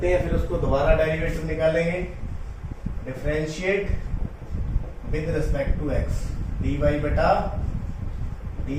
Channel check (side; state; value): both; identical; correlation 1.00